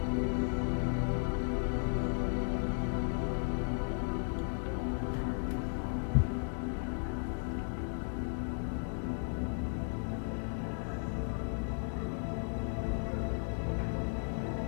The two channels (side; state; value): right; silent; 54 dB below the other